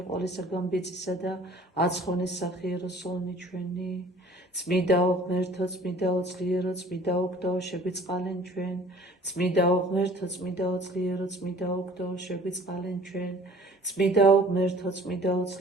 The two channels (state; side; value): normal; both; correlation 0.50